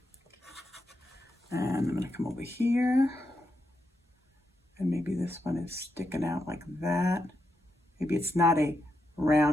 And I'm going to come over here. And maybe this one is sticking out like that. Maybe it's not a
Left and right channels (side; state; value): both; normal; correlation 0.84